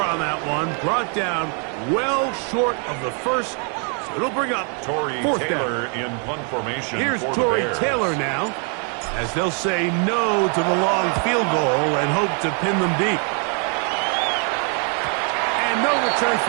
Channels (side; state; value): left; quieter; 39.5 dB